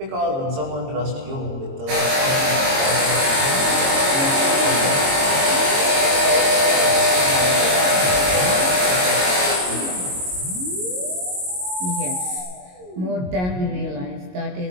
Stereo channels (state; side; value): late; left; 22 ms